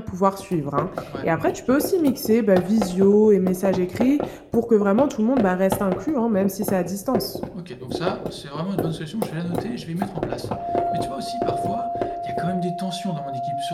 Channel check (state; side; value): identical; both; correlation 1.00